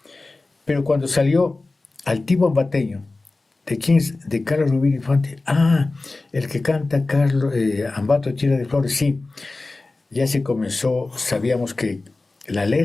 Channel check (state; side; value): quieter; right; 3.3 dB